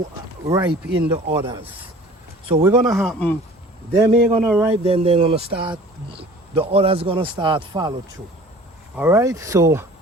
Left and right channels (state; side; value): normal; both; correlation 0.46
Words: ripe in the others. So we're gonna happen, them ain't gonna ripe, then they're gonna start, the others gonna start follow through. All right, so